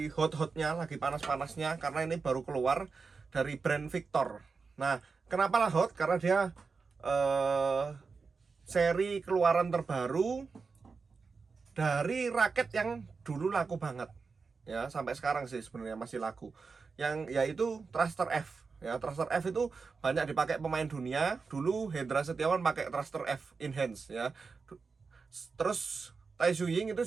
hot-hotnya, lagi panas-panasnya, karena ini baru keluar dari brand Victor. Nah, kenapa lah hot? Karena dia seri keluaran terbaru dari raket yang dulu laku banget, ya sampai sekarang sih sebenarnya masih laku, yang yaitu Thruster F. Ya, Thruster F itu banyak dipakai pemain dunia. Dulu Hendra Setiawan pakai Thruster F Enhance ya. Terus Tai Tzu Ying itu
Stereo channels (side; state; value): left; quieter; 4.8 dB